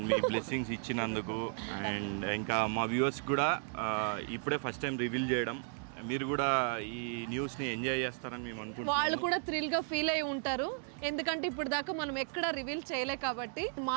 మీ బ్లెస్సింగ్స్ ఇచ్చినందుకు అండ్ ఇంకా మా వ్యూవర్స్ కూడా ఇప్పుడే ఫస్ట్ టైం రివీల్ చేయడం మీరు కూడా ఈ న్యూస్ ని ఎంజాయ్ చేస్తారని మేము అనుకుంటున్నాం వాళ్ళు కూడా థ్రిల్ గా ఫీల్ అయి ఉంటారు ఎందుకంటే ఇప్పుడు దాకా మనం ఎక్కడ రివీల్ చేయలే కాబట్టి మా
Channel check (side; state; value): left; silent; 55 dB below the other